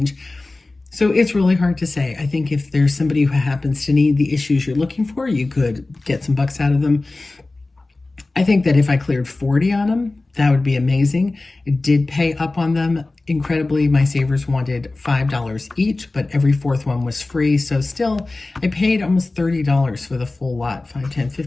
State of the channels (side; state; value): right; quieter; 3.2 dB